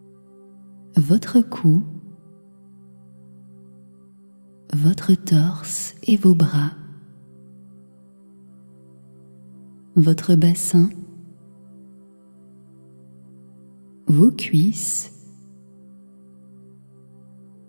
votre cou, votre torse et vos bras, votre bassin, vos cuisses,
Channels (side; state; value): both; inverted; correlation -1.00